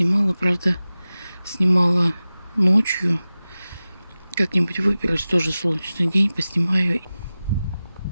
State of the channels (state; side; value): inverted; both; correlation -0.96